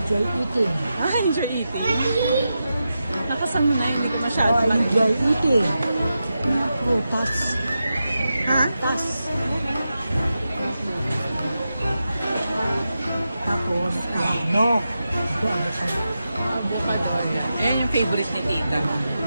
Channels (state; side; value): inverted; both; correlation -0.89